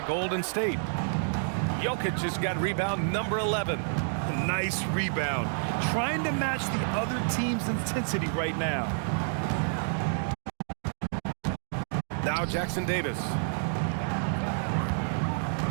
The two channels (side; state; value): left; silent; digital silence